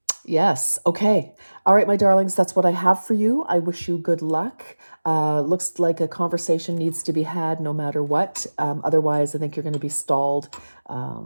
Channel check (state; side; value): inverted; both; correlation -1.00